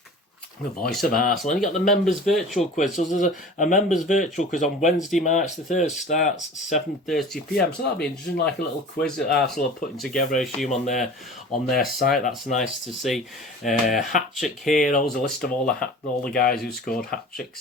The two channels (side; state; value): both; normal; correlation 0.40